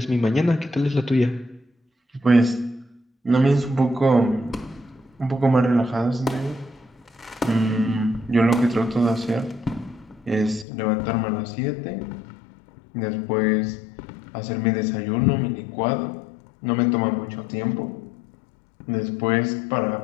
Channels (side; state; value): right; drops out; at 10.7 s